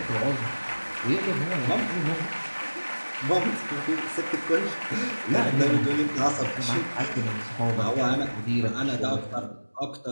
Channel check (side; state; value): both; inverted; correlation -1.00